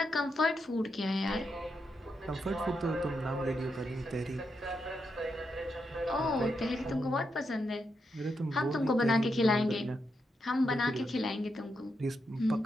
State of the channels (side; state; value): both; normal; correlation 0.83